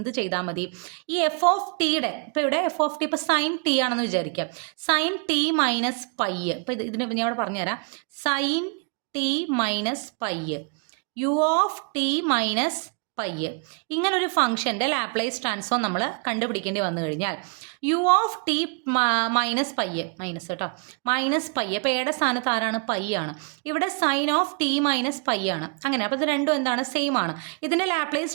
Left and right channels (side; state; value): left; quieter; 36.1 dB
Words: ചെയ്താൽ മതി? ഈ എഫ് ഓഫ് ടിയുടെ, ഇപ്പോൾ ഇവിടെ എഫ് ഓഫ് ടി ഇപ്പോൾ സൈൻ ടി ആണെന്ന് വിചാരിക്കുക. സൈൻ ടി മൈനസ് പൈ, ഇപ്പോൾ ഇതിന് ഞാൻ ഇവിടെ പറഞ്ഞുതരാം. Sine t minus pi, u of t minus pi, ഇങ്ങനൊരു ഫംഗ്ഷൻ്റെ ലാപ്ലേസ് ട്രാൻസ്ഫോം നമ്മൾ കണ്ടുപിടിക്കേണ്ടി വന്നു കഴിഞ്ഞാൽ u of t minus pi, minus കേട്ടോ, മൈനസ് പൈ, ഇപ്പോൾ എയുടെ സ്ഥാനത്ത് ആരാണ്? പൈ ആണ്. ഇവിടെ sine of t minus pi ആണ്. അങ്ങനെ അപ്പോൾ ഇത് രണ്ടും എന്താണ്? സെയിം ആണ്. ഇതിൻ്റെ ലാപ്ലേസ്